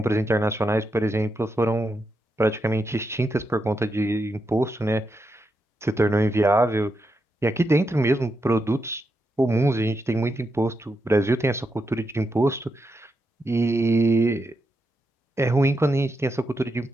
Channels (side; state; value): both; normal; correlation 0.84